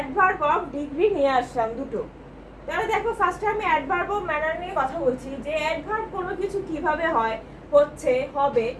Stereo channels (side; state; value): both; identical; correlation 1.00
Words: অফ ডিগ্রি নিয়ে আসলাম দুটো। তাহলে দেখো, ফার্স্টে আমি অ্যাডভার্ব অফ ম্যানার নিয়ে কথা বলছি যে অ্যাডভার্ব কোনো কিছু কিভাবে হয়, হচ্ছে, হবে